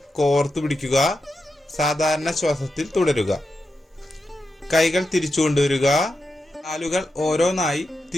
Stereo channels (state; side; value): normal; both; correlation 0.88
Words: കോർത്തു പിടിക്കുക. സാധാരണ ശ്വാസത്തിൽ തുടരുക. കൈകൾ തിരിച്ചു കൊണ്ടുവരിക. കാലുകൾ ഓരോന്നായി